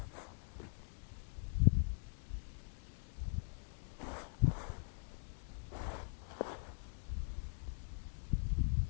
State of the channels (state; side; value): silent; right; digital silence